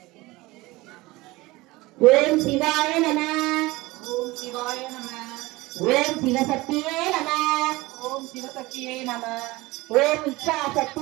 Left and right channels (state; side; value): quieter; left; 20.9 dB